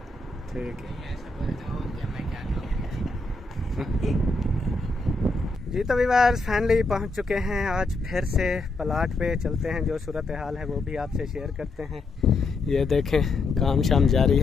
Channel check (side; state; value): right; quieter; 3.2 dB